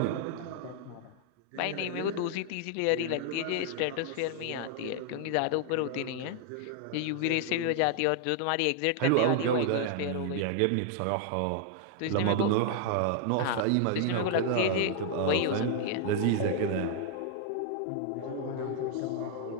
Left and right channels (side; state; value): both; different; correlation 0.00